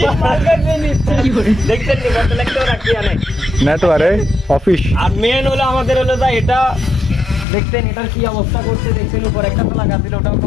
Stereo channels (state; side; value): drops out; right; at 7.5 s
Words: নেটওয়ার্ক অফিস। আর মেন হলো আমাদের হলো যা এটা দেখছেন, এটার কি অবস্থা করছে দেখছেন, উপর একটা ফেলা গাছিল ওটাও